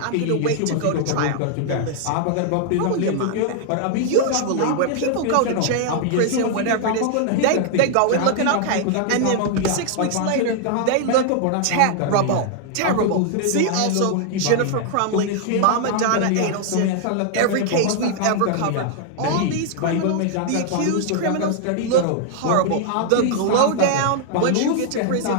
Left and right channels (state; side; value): different; both; correlation 0.00